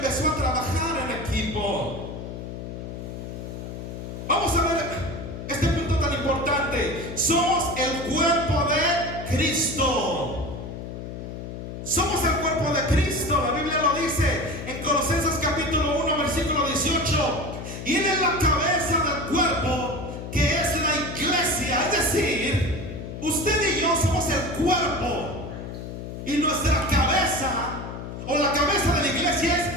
a trabajar en equipo. Vamos a ver este punto tan importante. Somos el cuerpo de Cristo. Somos el cuerpo de Cristo. La Biblia lo dice en Colosenses capítulo 1 versículo 18. Y Él es la cabeza del cuerpo, que es la iglesia. Es decir, usted y yo somos el cuerpo, y nuestra cabeza, o la cabeza de la iglesia,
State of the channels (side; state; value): left; noise; hum, 8 dB below the sound